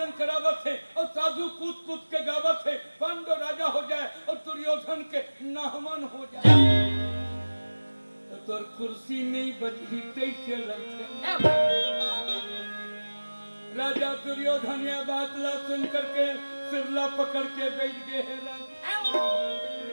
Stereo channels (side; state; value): both; inverted; correlation -1.00